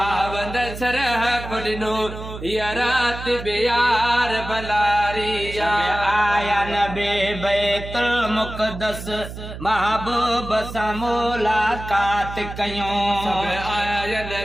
वंद शरफ दिनो हिया रात बेयार भलारिया। आया नबी बैतुल मुक़द्दस महबूब सा मुलाकात कयूं। आया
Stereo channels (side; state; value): right; noise; hum, 10 dB below the sound